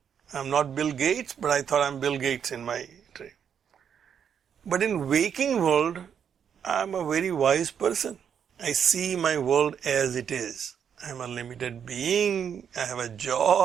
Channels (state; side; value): quieter; left; 7.9 dB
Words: I'm not Bill Gates, but I thought I'm Bill Gates in my dream. But in waking world, I'm a very wise person. I see my world as it is. I'm a limited being, I have a